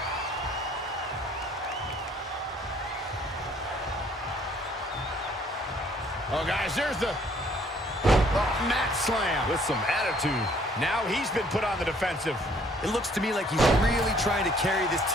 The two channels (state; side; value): normal; both; correlation 0.61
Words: Oh, guys, there's the mat slam with some attitude. Now he's been put on the defensive. It looks to me like he's really trying to carry this